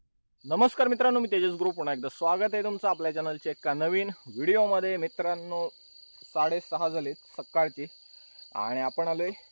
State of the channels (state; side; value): inverted; both; correlation -1.00